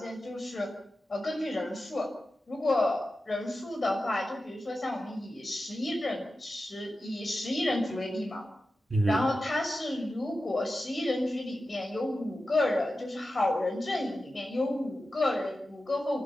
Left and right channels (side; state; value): both; normal; correlation 0.92